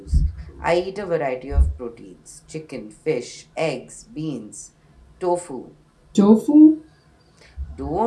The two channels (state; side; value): identical; both; correlation 1.00